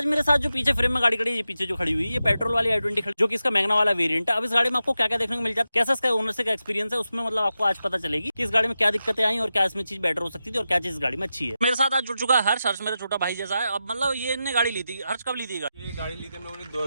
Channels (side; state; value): both; inverted; correlation -0.90